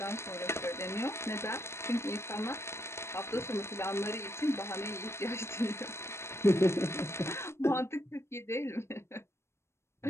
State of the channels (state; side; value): late; right; 0.13 ms